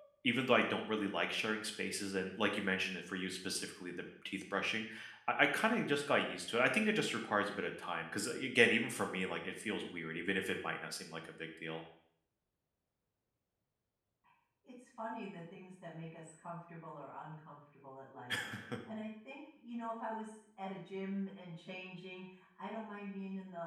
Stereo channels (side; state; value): both; identical; correlation 1.00